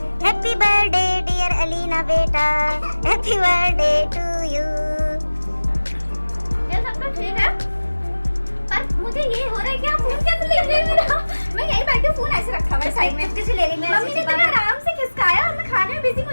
happy birthday dear Alina बेटा, हैप्पी बर्थडे टू यू। ये सब तो ठीक है, पर मुझे ये हो रहा है कि आप फोन कैसे ले रहे हो? मैं यहीं बैठे फोन ऐसे रखा हुआ साइड में, किसी ले रही मैं। मम्मी ने इतना आराम से खिसकाया और मैं खाने में बिजी हूं,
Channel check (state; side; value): inverted; both; correlation -1.00